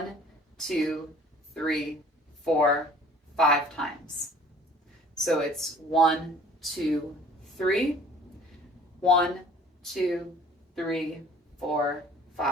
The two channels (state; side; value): normal; both; correlation 0.52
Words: 2, 3, 4, 5 times. So it's 1, 2, 3, 1, 2, 3, 4,